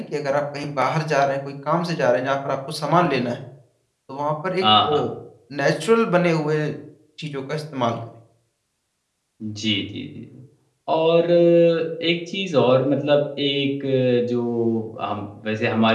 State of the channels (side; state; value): both; identical; correlation 1.00